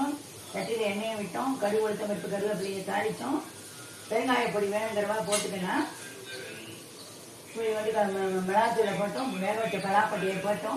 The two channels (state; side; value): identical; both; correlation 1.00